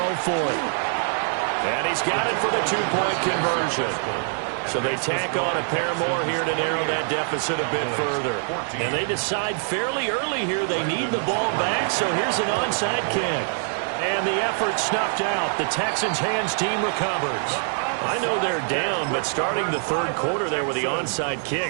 for it. And he's got it for the 2-point conversion. So they tack on a pair more here to narrow that deficit a bit further. And they decide fairly early here they need the ball back, so here's an onside kick. And the effort snuffed out. The Texans' hands team recovers. I know they're down, but starting the third quarter there with the onside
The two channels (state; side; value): silent; left; 58 dB below the other